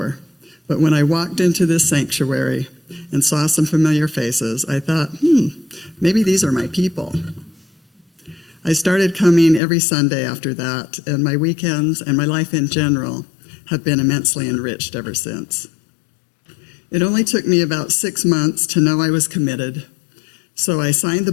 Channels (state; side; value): drops out; right; at 9.6 s